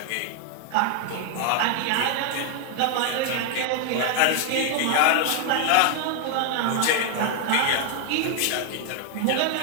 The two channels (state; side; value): different; both; correlation 0.00